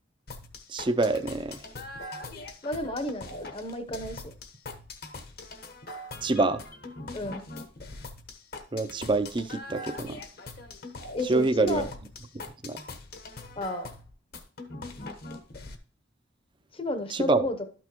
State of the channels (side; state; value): both; normal; correlation 0.47